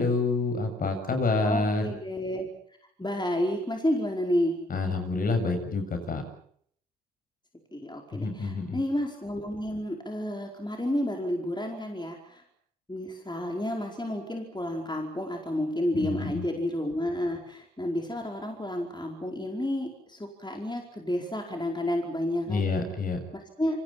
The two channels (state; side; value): normal; both; correlation 0.74